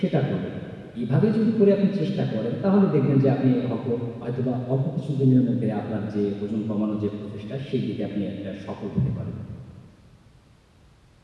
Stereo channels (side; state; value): both; identical; correlation 1.00